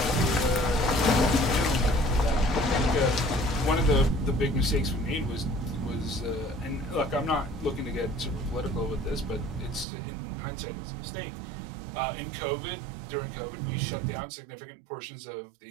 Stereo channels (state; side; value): drops out; left; at 9.9 s